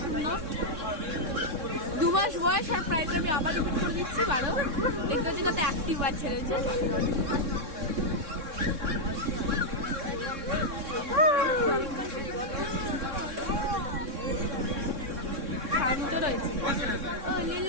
সুন্দর। 2 মাস বয়স আর প্রাইস আমি আবার রিপিট করে দিচ্ছি 12। দেখতে হচ্ছে কত অ্যাক্টিভ বাচ্চা রয়েছে। শান্ত রয়েছে।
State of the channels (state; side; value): late; left; 3.6 ms